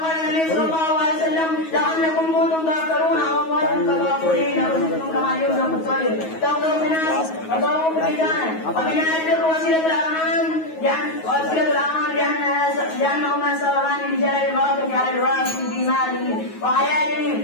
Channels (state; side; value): late; right; 9.4 ms